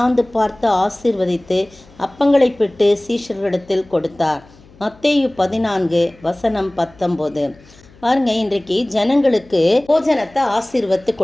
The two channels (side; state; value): left; noise; hum, 26 dB below the sound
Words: பார்த்து ஆசீர்வதித்து அப்பங்களை பிட்டு சீஷர்களிடத்தில் கொடுத்தார். மத்தேயு 14 வசனம் 19. பாருங்க, இன்றைக்கு ஜனங்களுக்கு போஜனத்தை ஆசீர்வத்து